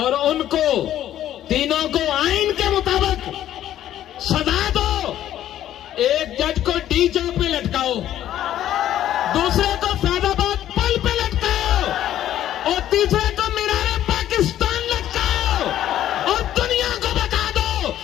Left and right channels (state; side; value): quieter; right; 12.0 dB